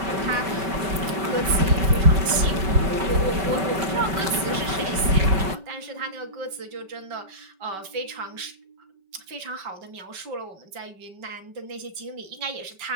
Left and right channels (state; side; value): late; left; 5.2 ms